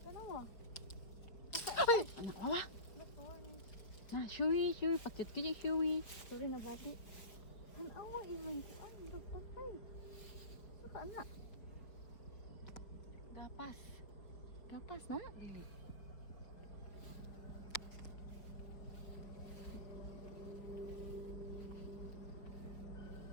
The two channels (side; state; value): right; late; 5.1 ms